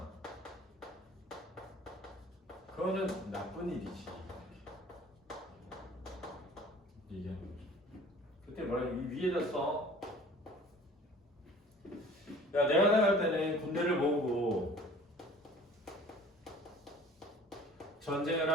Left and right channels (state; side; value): normal; both; correlation 0.47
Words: 그거는 나쁜 일이지. 얘기하는 거죠. 그때 뭐라 이 위에다 써. 야, 내가 나갈 때는 군대를 모으고 전쟁을